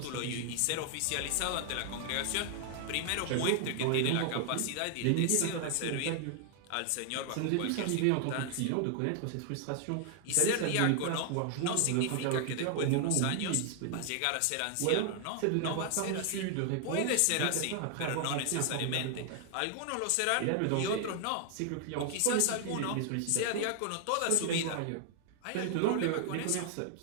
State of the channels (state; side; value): different; both; correlation 0.00